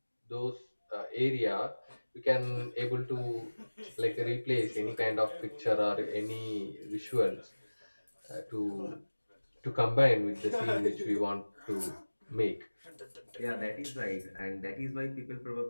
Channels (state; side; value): inverted; both; correlation -1.00